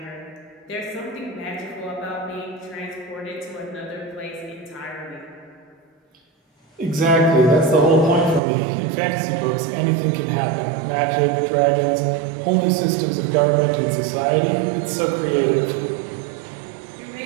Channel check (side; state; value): left; drops out; at 8.4 s